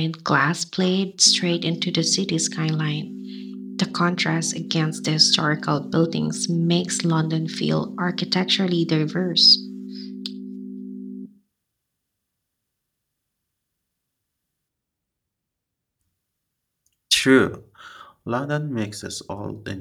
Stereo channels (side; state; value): both; identical; correlation 1.00